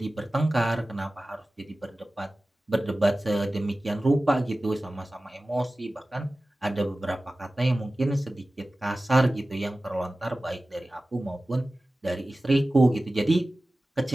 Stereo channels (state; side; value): normal; both; correlation 0.96